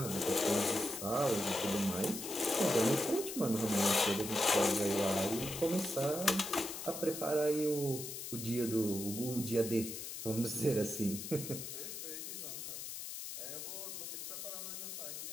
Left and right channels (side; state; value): left; noise; hiss, 7 dB below the sound